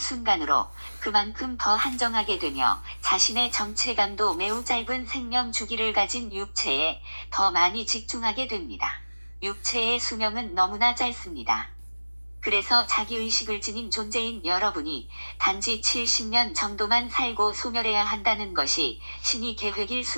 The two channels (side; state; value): both; inverted; correlation -1.00